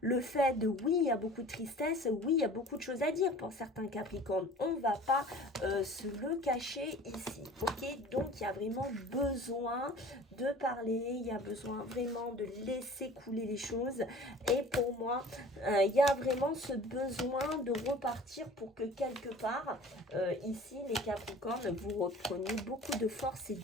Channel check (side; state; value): both; normal; correlation 0.45